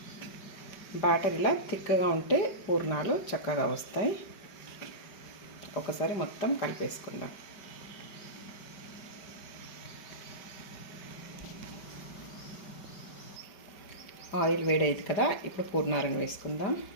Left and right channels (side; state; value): right; late; 4.9 ms